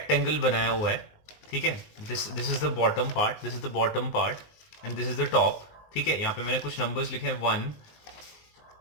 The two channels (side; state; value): right; late; 19 ms